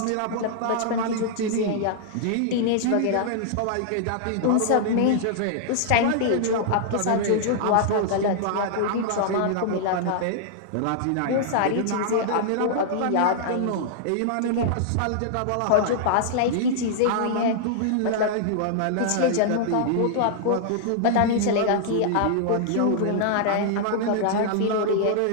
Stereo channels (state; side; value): different; both; correlation -0.01